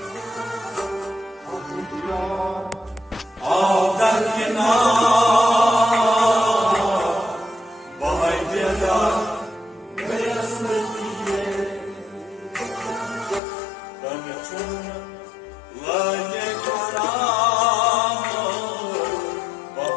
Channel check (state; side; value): drops out; right; at 13.4 s